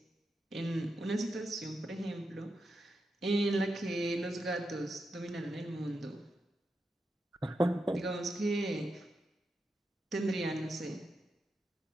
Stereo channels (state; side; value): normal; both; correlation 0.87